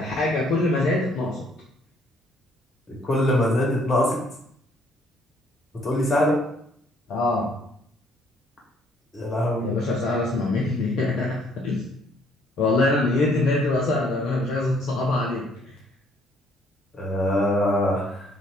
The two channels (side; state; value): both; normal; correlation 0.64